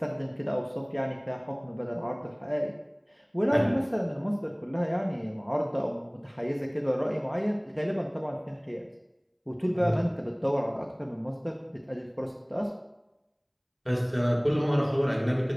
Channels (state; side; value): identical; both; correlation 1.00